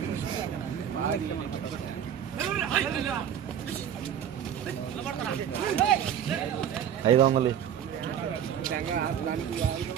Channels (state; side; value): quieter; left; 9.1 dB